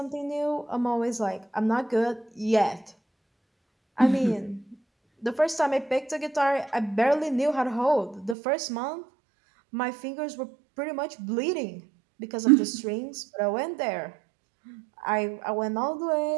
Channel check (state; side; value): drops out; left; at 8.3 s